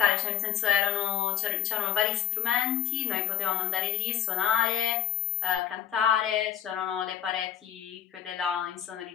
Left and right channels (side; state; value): right; quieter; 10.0 dB